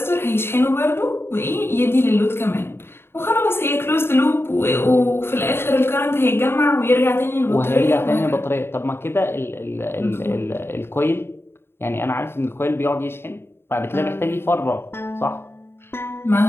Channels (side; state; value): right; late; 0.11 ms